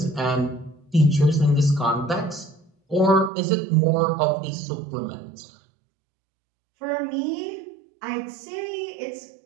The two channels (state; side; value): drops out; left; at 3.3 s